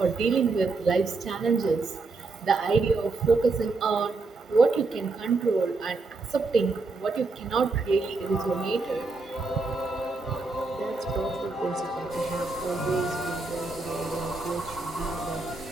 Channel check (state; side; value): quieter; left; 3.7 dB